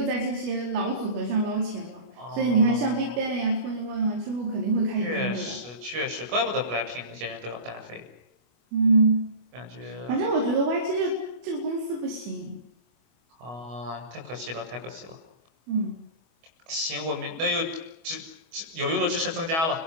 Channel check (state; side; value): late; left; 25 ms